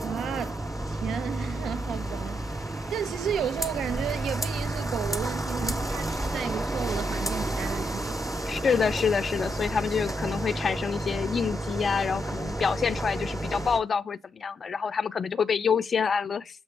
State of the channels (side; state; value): both; normal; correlation 0.81